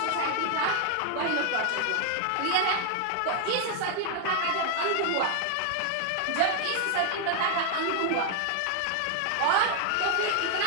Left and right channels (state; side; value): different; both; correlation 0.00